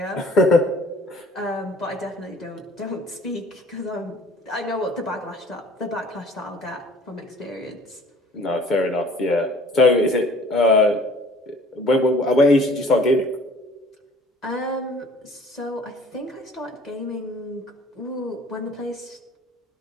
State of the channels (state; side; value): normal; both; correlation 0.52